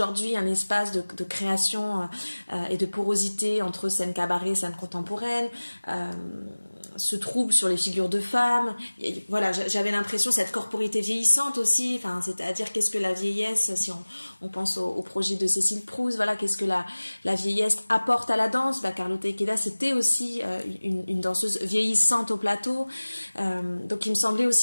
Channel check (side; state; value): both; inverted; correlation -1.00